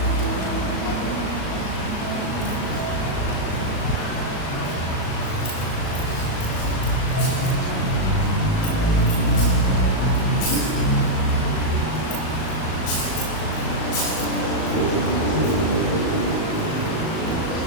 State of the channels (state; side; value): late; right; 37 ms